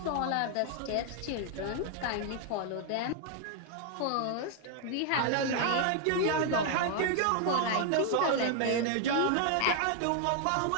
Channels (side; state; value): both; different; correlation 0.00